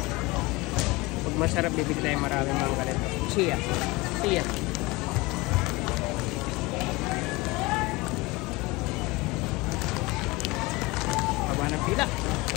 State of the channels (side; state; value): right; quieter; 23.0 dB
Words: Pag masarap, bibig tayo maraming mga ganito. Chia. Haba ng pila.